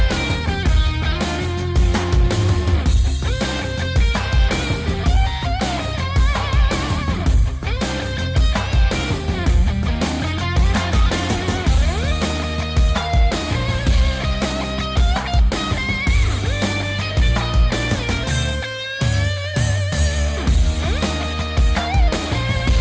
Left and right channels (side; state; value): both; identical; correlation 1.00